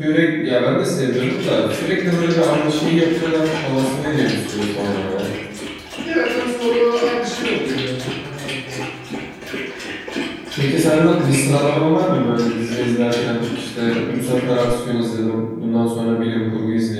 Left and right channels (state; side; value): identical; both; correlation 1.00